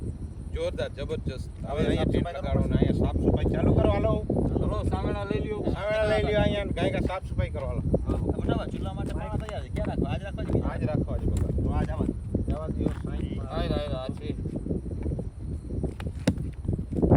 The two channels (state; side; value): identical; both; correlation 1.00